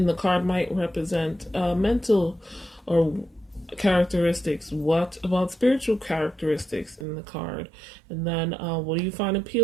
the card might represent mental or characteristics? What about spiritual characteristics in the card? And then what do you find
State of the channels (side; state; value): left; drops out; at 7.1 s